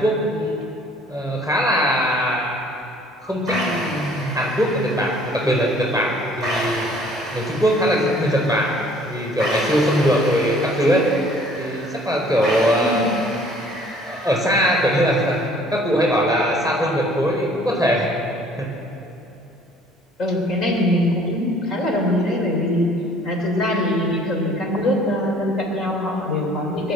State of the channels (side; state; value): both; normal; correlation 0.56